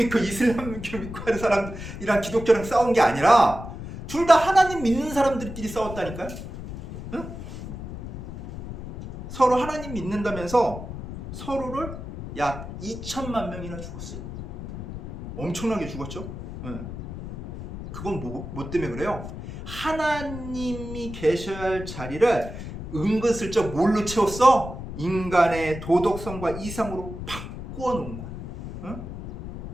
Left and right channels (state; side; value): noise; left; rumble, 10 dB below the sound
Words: 이슬람교 믿고 하는 사람이랑 기독교랑 싸운 게 아니라 둘 다 하나님 믿는 사람들끼리 싸웠다니까요. 서로 하나님 믿는다면서 서로를 약 2천만 명이나 죽었어요. 엄청나게 죽었죠. 네. 그건 뭐 때문에 그래요? 하나님이 계셔야 할 자리를 은근슬쩍 뭘로 채웠어? 인간의 도덕성과 이상으로 바꾸어 놓은 거야. 응?